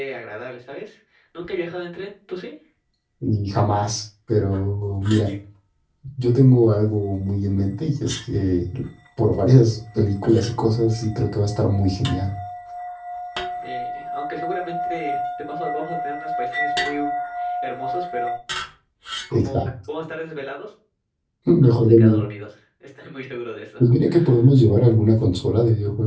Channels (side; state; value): both; identical; correlation 1.00